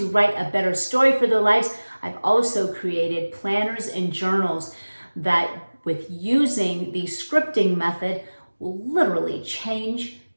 write a better story for their lives. I've also created planners and journals that, with using the scripting method, will literally change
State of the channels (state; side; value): inverted; both; correlation -1.00